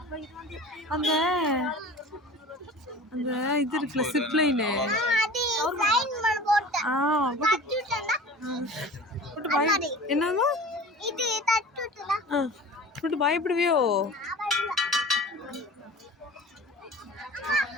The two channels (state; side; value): normal; both; correlation 0.39